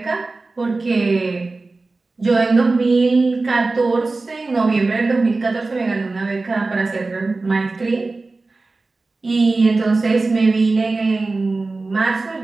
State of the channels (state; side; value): quieter; left; 3.5 dB